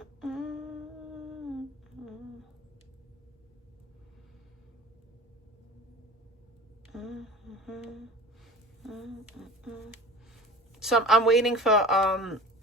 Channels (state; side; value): normal; both; correlation 0.37